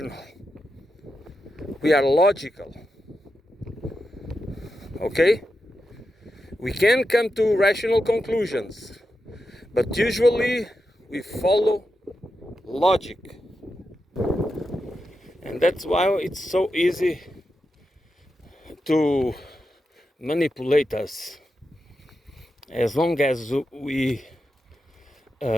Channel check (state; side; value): normal; both; correlation 0.88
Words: We are logical. Okay? We can come to rational conclusions, but usually we follow logic. And that's why it's so easy to manipulate us. As long as we